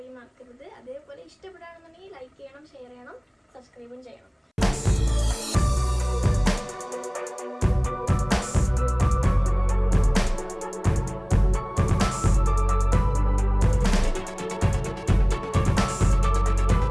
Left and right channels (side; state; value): both; identical; correlation 1.00